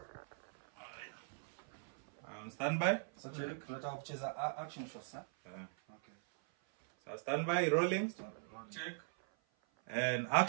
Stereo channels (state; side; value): silent; left; 51 dB below the other